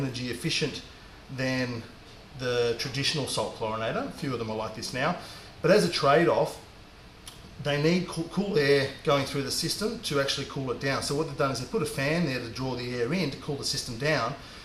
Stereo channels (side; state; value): both; identical; correlation 1.00